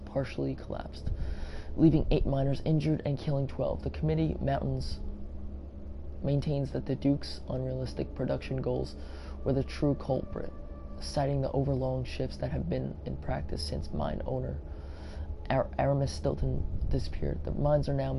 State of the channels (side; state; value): both; identical; correlation 1.00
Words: collapsed, leaving 8 miners injured and killing 12. The committee maintains that the Duke's unrealistic production goals were the true culprit, citing the overlong shifts that have been in practice since mine owner Aramis Stilton disappeared. The mines are now